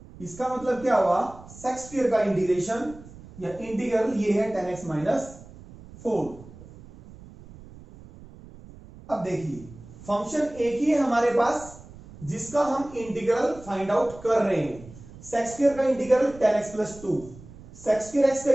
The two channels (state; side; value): noise; right; rumble, 19 dB below the sound